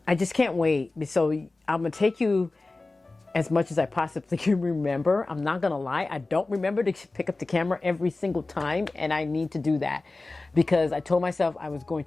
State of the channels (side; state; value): right; quieter; 3.3 dB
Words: I just can't wait. So I'm going to take you as much as I possibly can remember. I'm not going to lie. I don't remember to pick up the camera every single time. And I need to do that because I told myself I was going